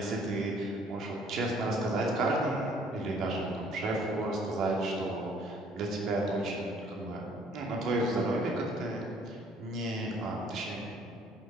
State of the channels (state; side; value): normal; both; correlation 0.60